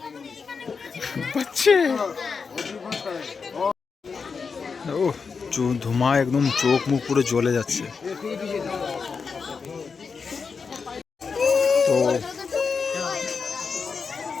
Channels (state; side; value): quieter; right; 5.3 dB